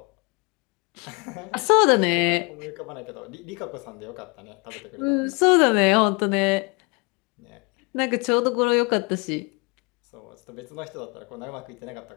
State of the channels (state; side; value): quieter; right; 30.3 dB